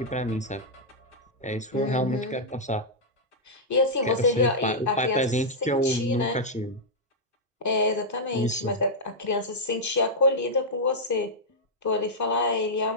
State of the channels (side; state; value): both; normal; correlation -0.07